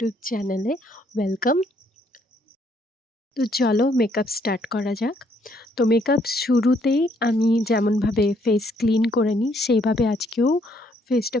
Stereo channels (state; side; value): normal; both; correlation 0.69